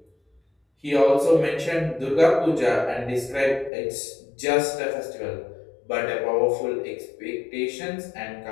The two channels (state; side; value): drops out; right; at 3.7 s